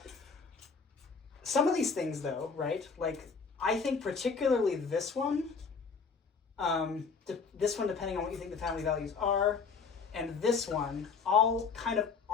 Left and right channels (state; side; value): quieter; right; 5.2 dB